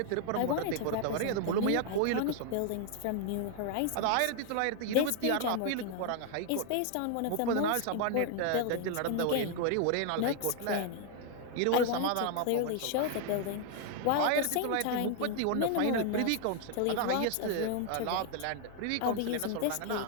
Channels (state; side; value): different; both; correlation 0.00